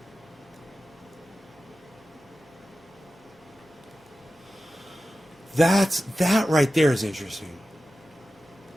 That right there is interesting.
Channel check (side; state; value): both; normal; correlation 0.93